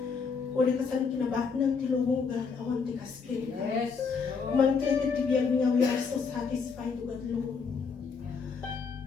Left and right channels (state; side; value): quieter; right; 5.4 dB